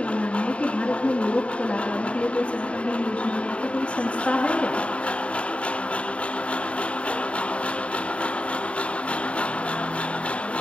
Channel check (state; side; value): late; right; 0.061 ms